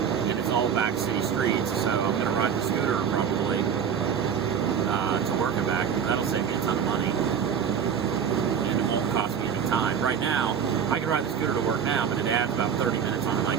And it's all back city streets, so I'm gonna ride the scooter probably to work and back. That'll save me a ton of money, and it won't cost me any time. Right now, I can ride the scooter to work now, but it adds about 30 minutes on my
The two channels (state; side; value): quieter; left; 7.6 dB